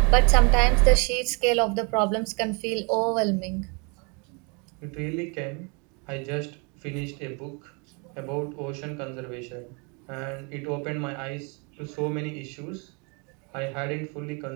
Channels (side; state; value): left; quieter; 33.0 dB